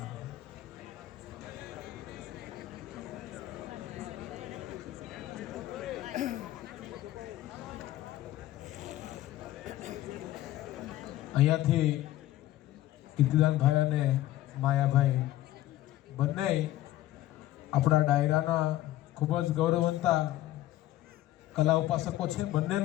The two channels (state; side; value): quieter; right; 14.8 dB